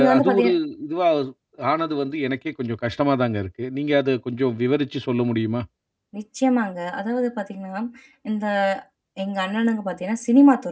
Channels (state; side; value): identical; both; correlation 1.00